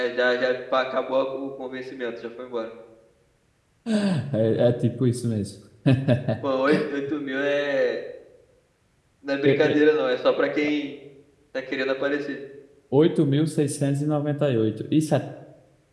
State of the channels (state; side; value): identical; both; correlation 1.00